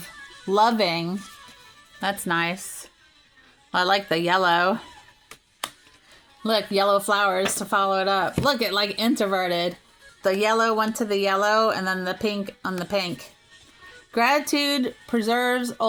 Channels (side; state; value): both; identical; correlation 1.00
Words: loving. That's nice. I like the yellow. Look, yellow flowers to follow it up. Look, it like introverted. The yellow went to the yellow and then the pink on the pink. Gratitude preserves